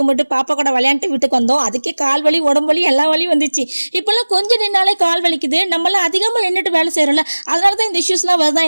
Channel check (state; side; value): inverted; both; correlation -1.00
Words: பாப்பா கூட விளையாண்டு வீட்டுக்கு வந்தோம். அதுக்கே கால் வலி உடம்பு வலி எல்லா வலியும் வந்துச்சு. இப்பெல்லாம் கொஞ்சம் நின்னாலே கால் வலிக்குது. நம்மளாம் அதிகமா நின்றுட்டு வேலை செய்யறோம்ல, அதனாலதான் இந்த இஷ்யூஸ்லாம் வருதா